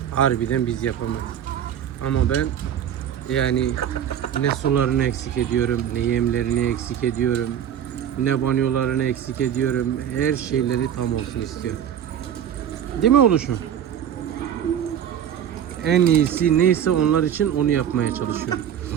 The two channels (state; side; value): quieter; left; 9.5 dB